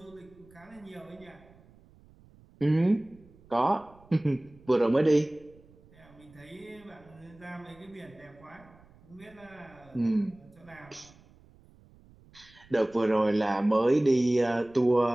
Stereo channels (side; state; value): right; noise; rumble, 26 dB below the sound